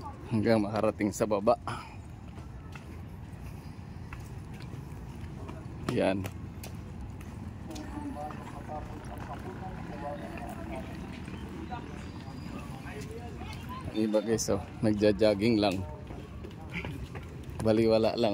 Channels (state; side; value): identical; both; correlation 1.00